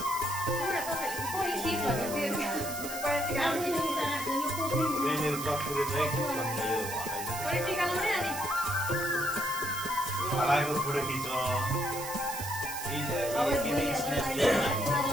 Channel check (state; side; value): noise; right; hiss, 8 dB below the sound